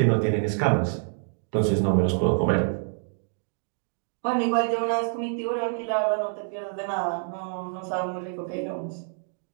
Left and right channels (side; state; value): left; silent; 60 dB below the other